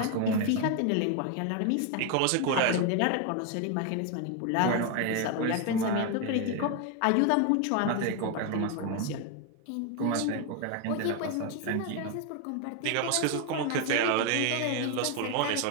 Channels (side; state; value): both; different; correlation 0.01